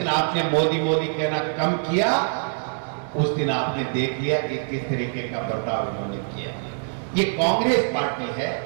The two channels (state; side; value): silent; left; digital silence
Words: आपने मोदी मोदी कहना कम किया उस दिन आपने देख लिया कि किस तरीके का बर्ताव उन्होंने किया। ये कांग्रेस पार्टी है